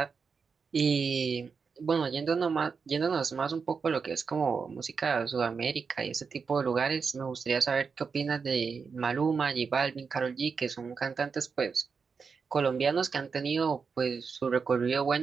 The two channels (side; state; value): left; quieter; 5.5 dB